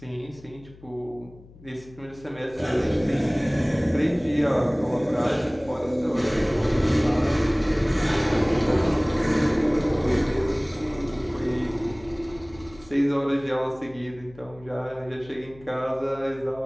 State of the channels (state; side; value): noise; left; hum, 22 dB below the sound